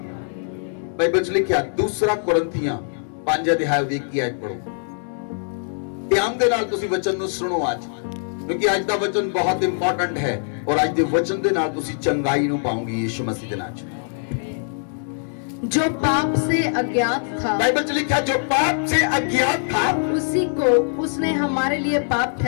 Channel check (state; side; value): silent; right; digital silence